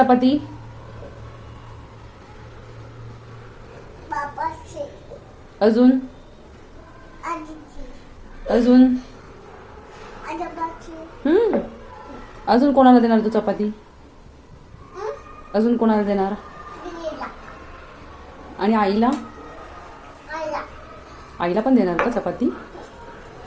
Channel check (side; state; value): both; identical; correlation 1.00